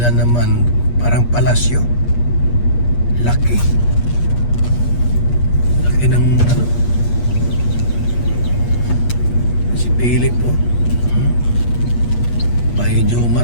naman. Parang palasyo. Laki. Laki ng ano. Si Philip oh. Bahay ni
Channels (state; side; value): late; right; 8.4 ms